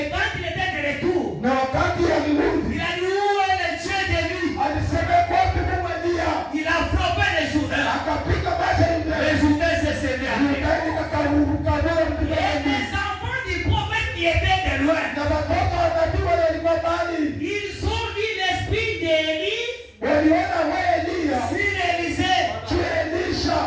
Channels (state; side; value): identical; both; correlation 1.00